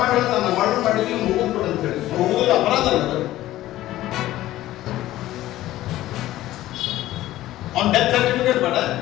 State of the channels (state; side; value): quieter; right; 15.1 dB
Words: ಮಾಡಿ ಹೇಳ್ತಾನ ಮರ್ಡರ್ ಮಾಡಿ ನೀವು ಮುಗಿದ್ ಕೊಡು ಅಂತ ಹೇಳಿ. ಮುಗಿದ ಅಪರಾಧ ಅಲ್ಲ, ಅವ್ನ ಡೆತ್ ಸರ್ಟಿಫಿಕೇಟ್ ಬೇಡ.